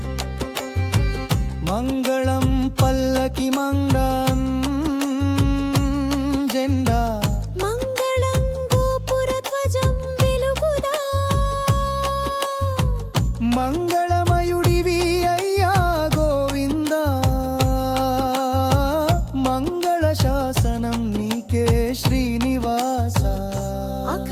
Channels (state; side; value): identical; both; correlation 1.00